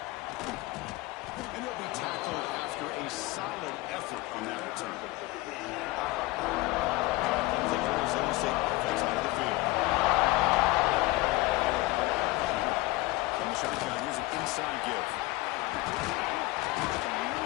And he'll be tackled after a solid effort on that return. The Arizona State offense onto the field. Shotgun, here's an inside give.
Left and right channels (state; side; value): quieter; right; 20.2 dB